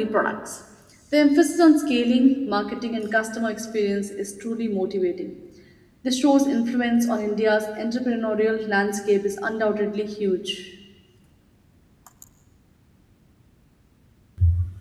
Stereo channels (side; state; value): both; identical; correlation 1.00